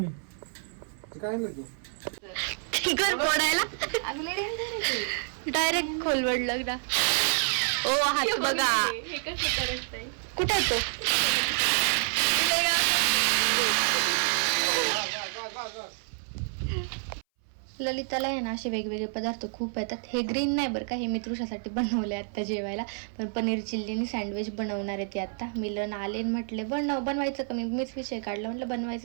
मी. ते काय नाही तू घर फोडायला अगं लय danger आहे ते. डायरेक्ट खोलवड लग्न. ओ हात बघा हे कसं करत आहे. कुठे आहे तो? ललिताला आहे ना असे वेगवेगळे पदार्थ खूप येतात. हे ग्रीन नाही बरं का, हे मी तृषासाठी बनवले आत्ता जेवायला. पण पनीर चिल्लीनी सँडविच बनवणार आहे ती आत्ता. मिलन आले म्हटले बनवायचं का? मीच विषय काढला, म्हटलं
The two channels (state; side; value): silent; left; 59 dB below the other